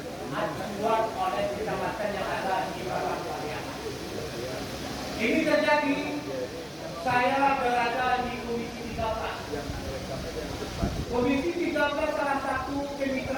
acuan oleh kecamatan yang ada di bawah Pariaman. Ini terjadi saya berada di Komisi 13. Komisi 13 salah satu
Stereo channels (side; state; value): both; identical; correlation 1.00